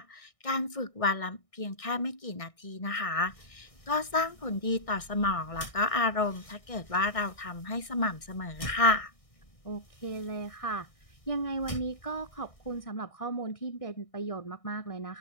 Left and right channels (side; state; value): right; late; 1.6 ms